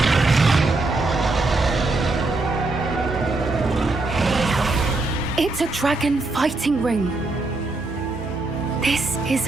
It's a dragon fighting ring. This is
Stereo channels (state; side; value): quieter; left; 3.2 dB